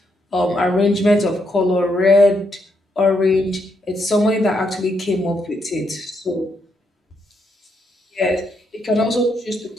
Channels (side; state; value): both; normal; correlation 0.78